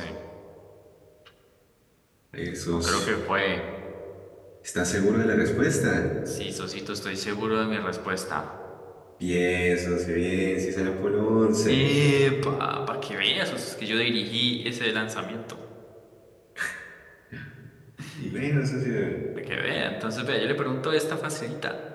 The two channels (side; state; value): both; identical; correlation 1.00